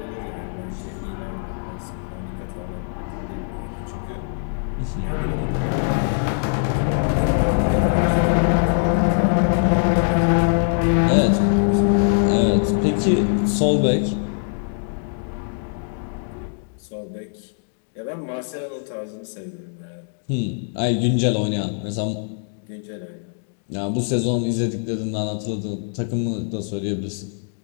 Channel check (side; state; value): right; silent; digital silence